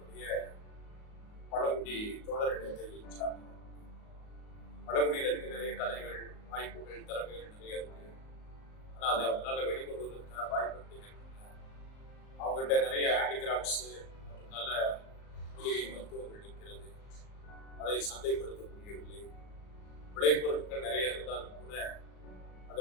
பழங்குடி தோழர் இனத்தை சார்ந்தவர். பழங்குடியினருக்கு நிறைய கலைகள், வாய்ப்புகள், திறமைகள் நிறைய இருக்கு. ஆனால் அதை அவங்களால வெளிக்கொண்டு வருவதற்கான வாய்ப்பு இருக்கின்றன. அவங்ககிட்ட நிறைய ஹேண்டிகிராஃப்ட்ஸு மற்றும் நல்ல மூலிகை மருத்துவங்கள் இருக்கிறது. அதை சந்தைப்படுத்த முடியவில்லை. விளைபொருட்கள் நிறைய இருந்தாலும் கூட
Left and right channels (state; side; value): late; right; 38 ms